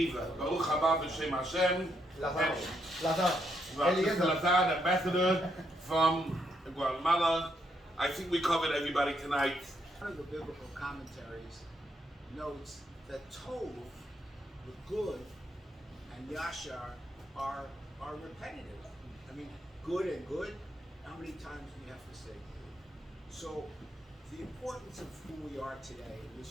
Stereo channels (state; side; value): normal; both; correlation 0.77